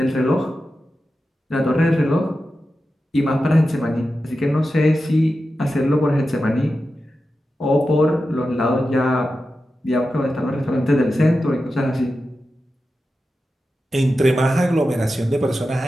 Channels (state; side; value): normal; both; correlation 0.91